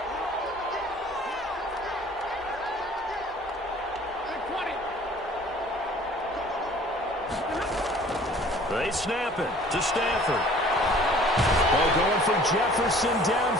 They snap it to Stafford. Ball going for Jefferson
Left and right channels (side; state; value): both; normal; correlation 0.51